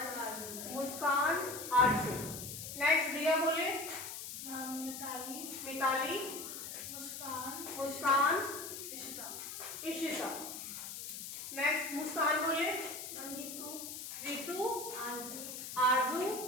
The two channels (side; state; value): left; noise; hiss, 8 dB below the sound